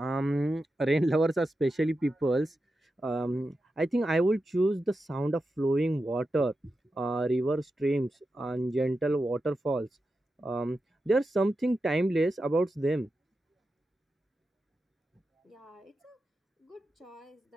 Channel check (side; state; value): both; normal; correlation 0.90